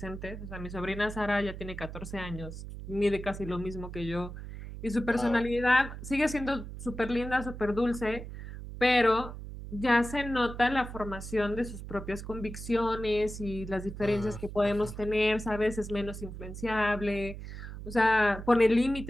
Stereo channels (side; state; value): right; noise; hum, 10 dB below the sound